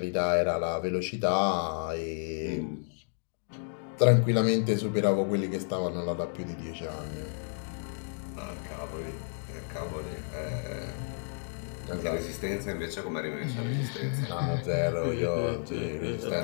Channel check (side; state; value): right; silent; 57 dB below the other